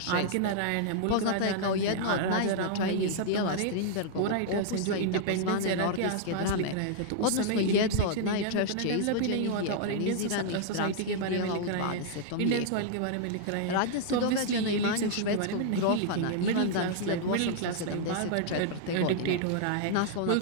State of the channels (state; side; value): different; both; correlation -0.01